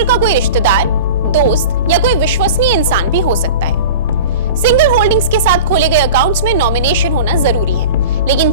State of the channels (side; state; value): both; inverted; correlation -0.36